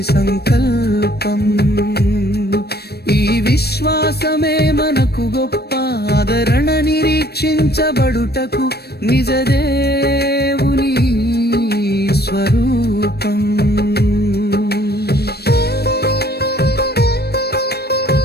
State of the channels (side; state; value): right; late; 0.47 ms